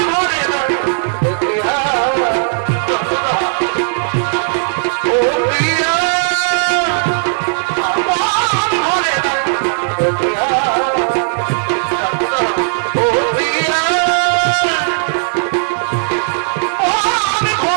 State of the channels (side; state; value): left; silent; digital silence